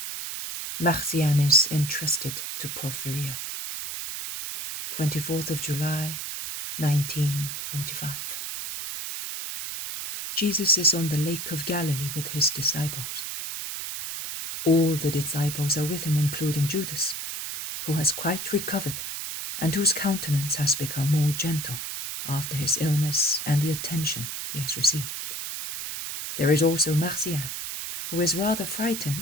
Marjiam is entrusted to Porphirea. 24th of July, 1945. Jesus is on the Lake of Galilee with his disciples. All the disciples are with him, including Judas, who has quite recovered and whose countenance has become more gentle after his illness and the attention he has received. There is also Marjiam, who is rather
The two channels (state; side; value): noise; right; hiss, 5 dB below the sound